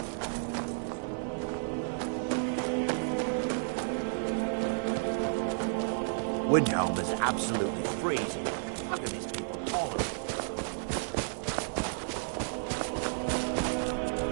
Windhelm is absolutely freezing. How can these people tolerate it?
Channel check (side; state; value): left; silent; digital silence